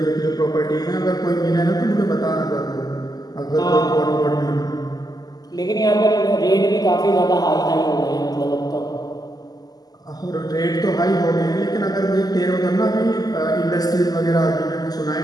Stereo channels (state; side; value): late; right; 0.19 ms